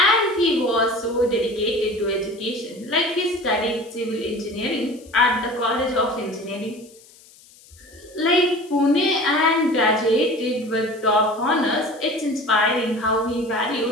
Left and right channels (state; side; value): noise; left; hiss, 25 dB below the sound